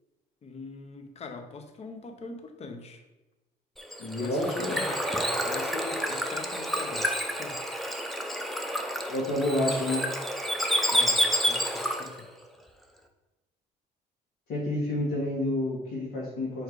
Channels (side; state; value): both; normal; correlation 0.65